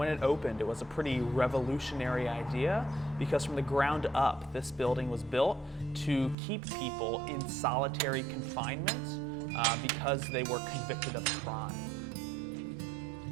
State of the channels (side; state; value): left; drops out; at 6.4 s